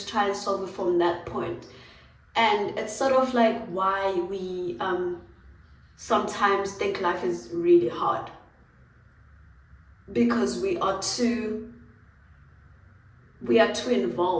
try and solve it from that point. And it's sort of like why we sometimes think life is really hard, because we are too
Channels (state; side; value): identical; both; correlation 1.00